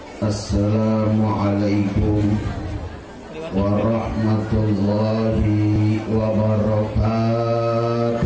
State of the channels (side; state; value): both; identical; correlation 1.00